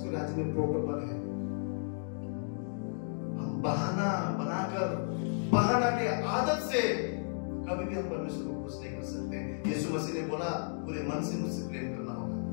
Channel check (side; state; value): right; silent; digital silence